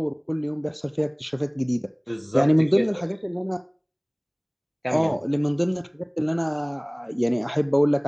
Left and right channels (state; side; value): identical; both; correlation 1.00